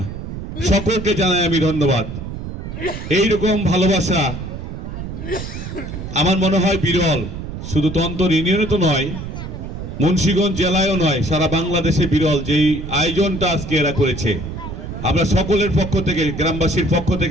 সকলকে জানাই আমি ধন্যবাদ। এইরকম ভালোবাসা আমার মনে হয় বিরল, শুধু তন্তর ইউনিয়নে তো নয়, মুন্সিগঞ্জ জেলায়ও নয়, সারা বাংলাদেশে বিরল যেই আয়োজনটা আজকে এরা করেছে। আমরা সকলের পক্ষ থেকে, গ্রামবাসীর পক্ষ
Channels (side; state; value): right; noise; rumble, 8 dB below the sound